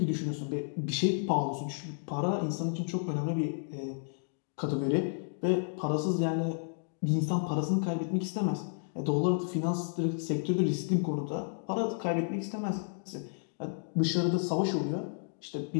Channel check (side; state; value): right; silent; digital silence